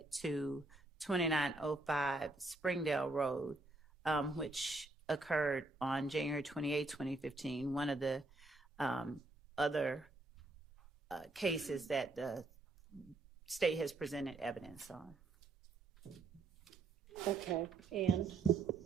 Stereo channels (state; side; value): quieter; left; 3.1 dB